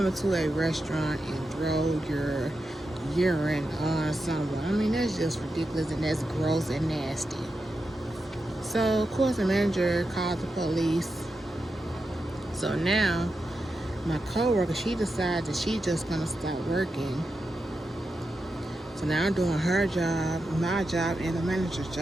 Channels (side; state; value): both; normal; correlation 0.88